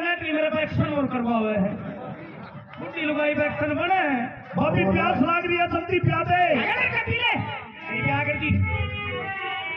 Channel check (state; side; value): identical; both; correlation 1.00